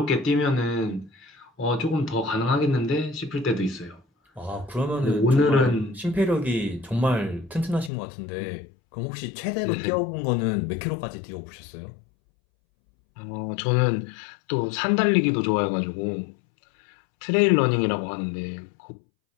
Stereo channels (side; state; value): right; drops out; at 7.9 s